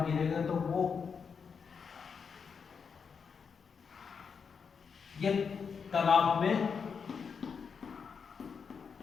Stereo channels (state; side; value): quieter; right; 6.0 dB